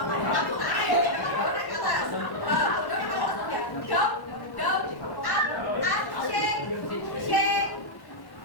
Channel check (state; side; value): late; right; 1.1 ms